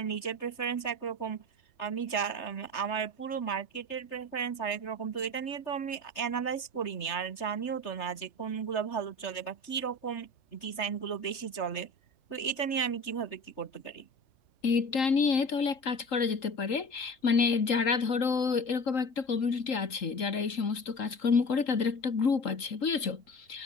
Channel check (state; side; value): late; right; 3.8 ms